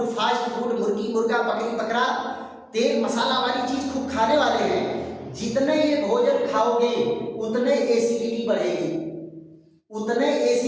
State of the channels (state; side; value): identical; both; correlation 1.00